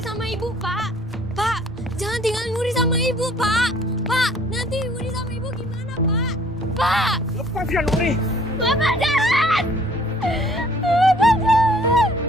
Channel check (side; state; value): both; normal; correlation 0.57